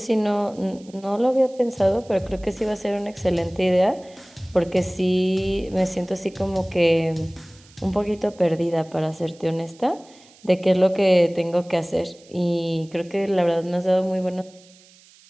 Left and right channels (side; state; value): right; noise; hiss, 26 dB below the sound